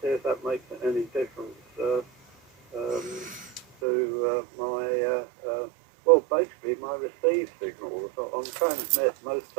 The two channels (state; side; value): drops out; left; at 3.7 s